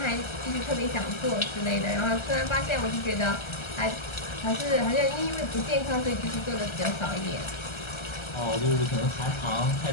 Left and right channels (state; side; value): late; right; 1.3 ms